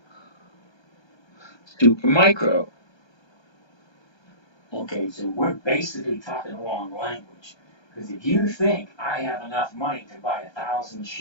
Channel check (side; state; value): right; late; 1.3 ms